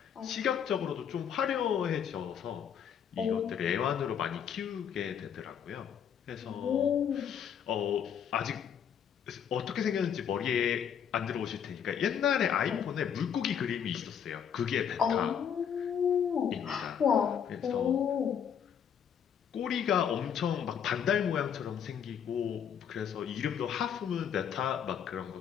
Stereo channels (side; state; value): right; quieter; 8.2 dB